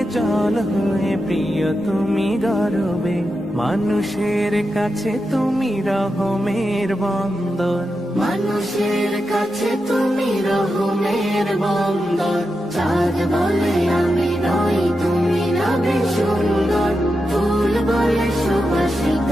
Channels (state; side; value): normal; both; correlation 0.88